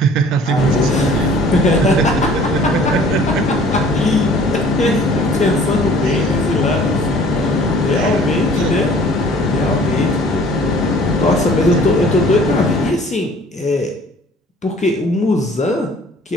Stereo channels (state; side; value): normal; both; correlation 0.52